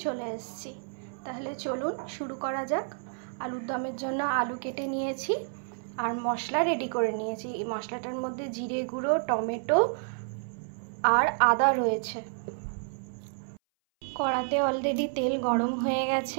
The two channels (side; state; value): left; silent; 58 dB below the other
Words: एसेछि। ताहले चलुन शुरू करा जाक। आलुर दमेर जन्य आलू केटे नियेछि और मशला रेडी करे नियेछि। एई मशलाटार मध्य जिरे गुঁড়ো, टमेटो और आदा रयेछे। कड़ाते अलरेडी तेल गरम हये